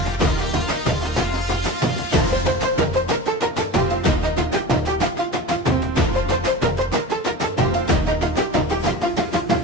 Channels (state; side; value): normal; both; correlation 0.33